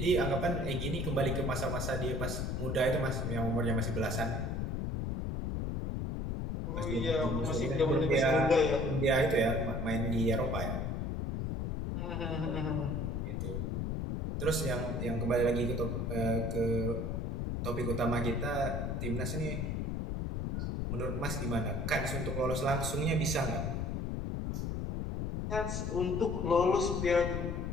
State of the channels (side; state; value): left; noise; rumble, 1 dB below the sound